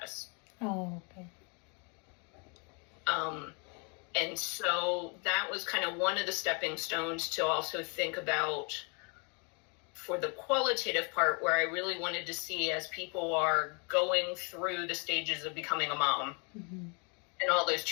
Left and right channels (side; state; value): right; quieter; 34.7 dB